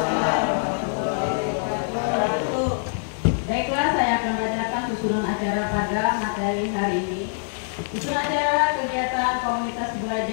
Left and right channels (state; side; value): silent; right; 62 dB below the other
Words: warahmatullahi wabarakatuh. Baiklah, saya akan bacakan susunan acara pada materi hari ini. Susunan acara kegiatan komunitas